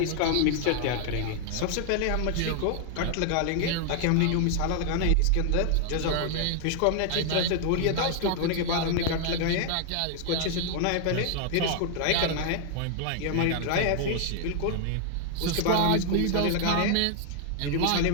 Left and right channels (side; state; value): both; different; correlation 0.00